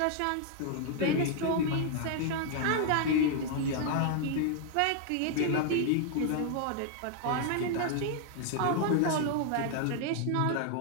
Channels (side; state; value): both; different; correlation 0.00